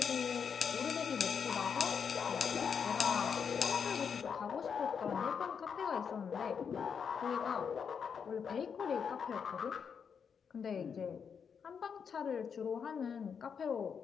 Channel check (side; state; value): right; quieter; 6.7 dB